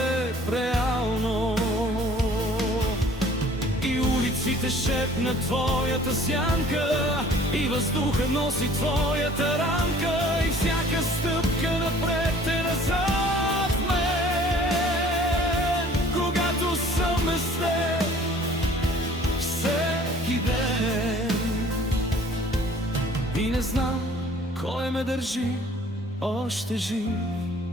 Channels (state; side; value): normal; both; correlation 0.52